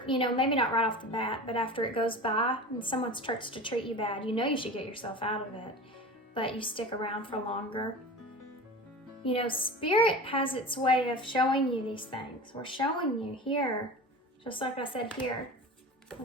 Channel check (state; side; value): normal; both; correlation 0.33